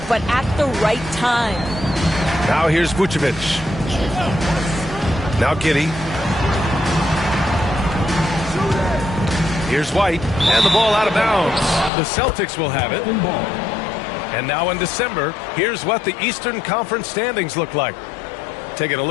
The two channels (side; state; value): right; drops out; at 11.9 s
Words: but at the right time. Now here's Vucevic. Now Giddey. Here's White. And the ball out of bounds. The Celtics will have it. And now in December, here's what the Eastern Conference standings look like. Taking a